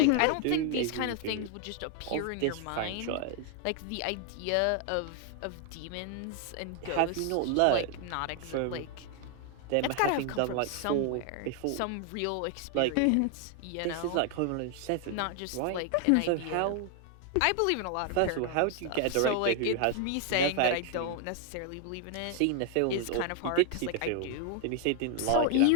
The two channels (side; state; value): both; different; correlation 0.00